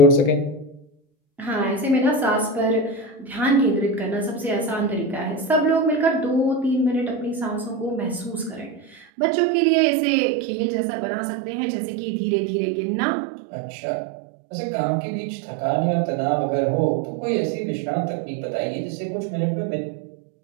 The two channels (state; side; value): drops out; left; at 9.0 s